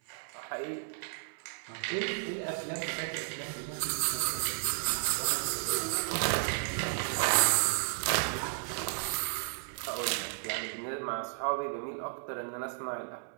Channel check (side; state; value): left; silent; 56 dB below the other